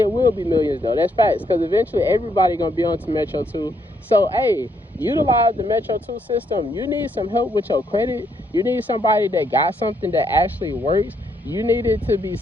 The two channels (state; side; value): normal; both; correlation 0.74